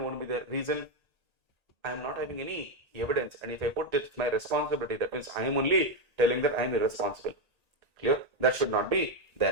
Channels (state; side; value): late; left; 1.9 ms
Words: be there. Reason, I am not having any evidence, and if I put this my responsibility, that means I am only telling that I am irresponsible. Clear? That should not be